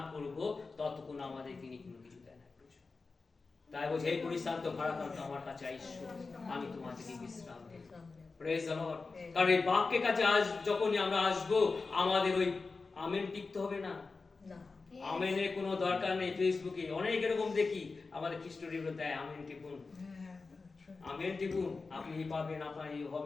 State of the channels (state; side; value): quieter; right; 4.1 dB